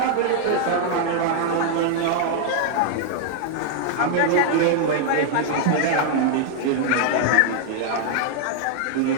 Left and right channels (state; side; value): different; both; correlation 0.00